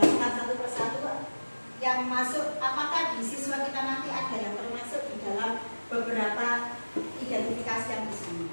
satu persatu yang masuk, apakah di siswa kita nanti ada yang termasuk di dalam beberapa identifikasi yang di sini.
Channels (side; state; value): both; inverted; correlation -1.00